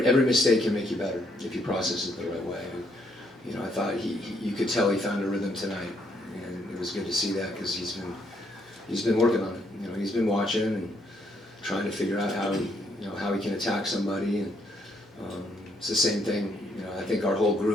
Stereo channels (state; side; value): normal; both; correlation 0.72